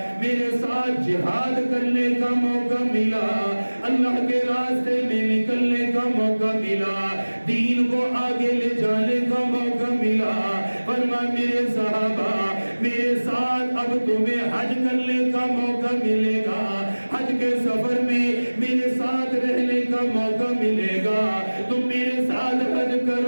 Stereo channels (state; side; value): inverted; both; correlation -1.00